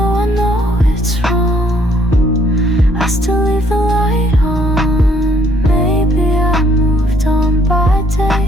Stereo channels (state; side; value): normal; both; correlation 0.65